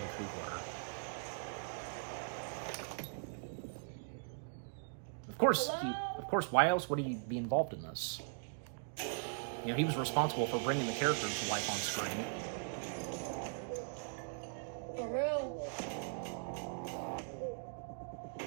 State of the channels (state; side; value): silent; left; digital silence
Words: Coogler. Of course, why else would he be involved in this? You know, he was responsible for bringing the characters to life on screen. For real?